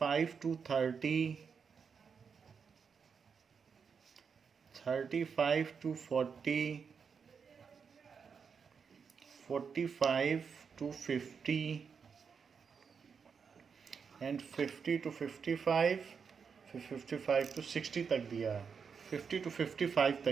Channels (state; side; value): quieter; left; 6.1 dB